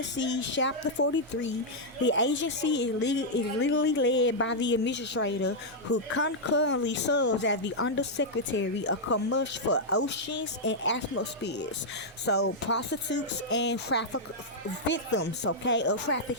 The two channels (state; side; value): normal; both; correlation -0.05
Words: Chapter 43, the agency is legally led by the administrator, who concurrently serves as the Undersecretary of Commerce for Oceans and Atmospheres. So prostitutes and victims, okay, of